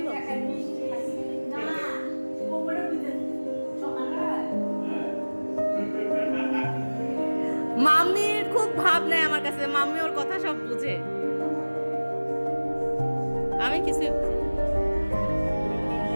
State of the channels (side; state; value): both; inverted; correlation -1.00